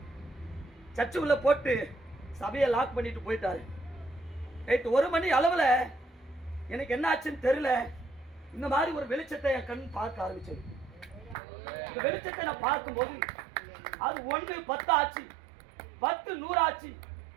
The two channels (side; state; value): left; drops out; at 11.4 s